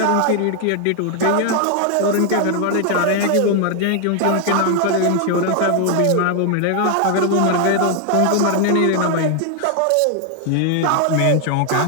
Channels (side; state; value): both; different; correlation 0.00